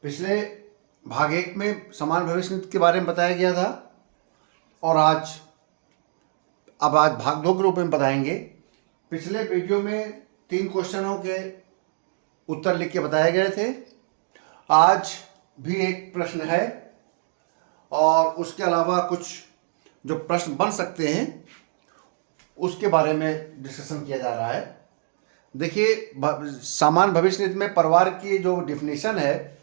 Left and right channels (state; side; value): silent; left; digital silence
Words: पिछले भाग 1 में समान भविष्य निधि के बारे में बताया गया था और आज भाग 2 के रूप में बताएंगे। पिछले वीडियो में 3 क्वेश्चनों के उत्तर लिख के बताए गए थे। आज भी एक प्रश्न है और उसके अलावा कुछ जो प्रश्न बन सकते हैं उसके बारे में डिस्कशन किया जा रहा है। देखिए, समान भविष्य निधि में परिवार की जो डिफिनीशन है